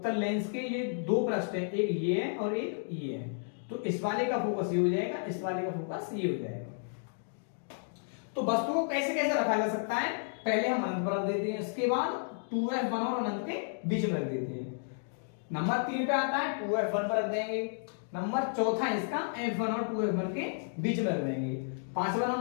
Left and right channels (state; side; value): silent; right; digital silence